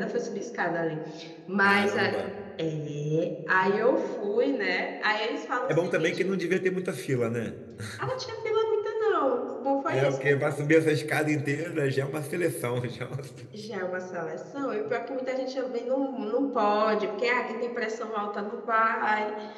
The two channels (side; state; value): both; identical; correlation 1.00